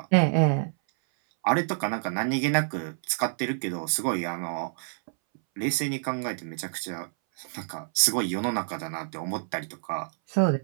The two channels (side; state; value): left; silent; 60 dB below the other